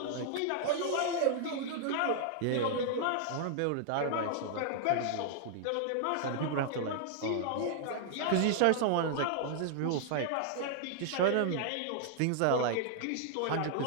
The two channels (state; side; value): different; both; correlation -0.01